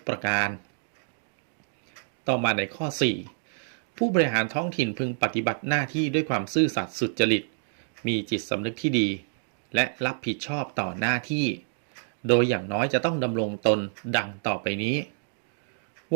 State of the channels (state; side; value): silent; left; digital silence